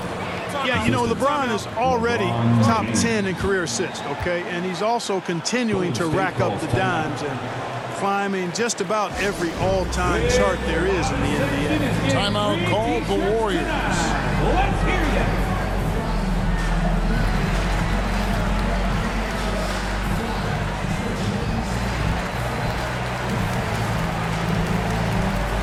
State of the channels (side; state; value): both; identical; correlation 1.00